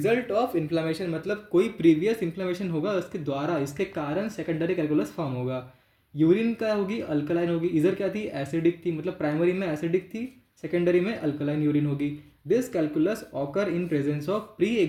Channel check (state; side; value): identical; both; correlation 1.00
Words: ऑफ इन्फ्लामेशन, मतलब कोई प्रीवियस इन्फ्लामेशन होगा उसके द्वारा, इसके कारण सेकेंडरी कैलकुलस फॉर्म होगा। यूरिन क्या होगी, अल्कलाइन होगी, इधर क्या थी, एसिडिक थी, मतलब प्राइमरी में एसिडिक थी, सेकेंडरी में अल्कलाइन यूरिन होगी। This calculus occur in presence of pre